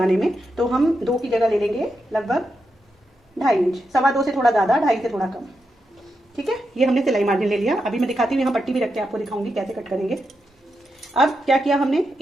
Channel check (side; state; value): both; normal; correlation 0.86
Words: में, तो हम 2 की जगह ले लेंगे लगभग 2.5 इंच, 2.25 से थोड़ा ज़्यादा, 2.5 से थोड़ा कम। ठीक है, ये हमने सिलाई मार्जिन ले लिया। अभी मैं दिखाती हूँ, यहाँ पट्टी भी रख के आपको दिखाऊंगी कैसे कट करेंगे। अब क्या किया हमने,